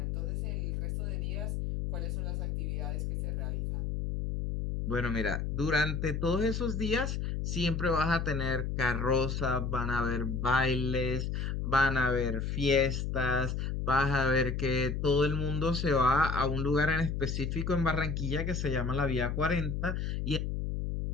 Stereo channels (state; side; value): noise; left; hum, 1 dB below the sound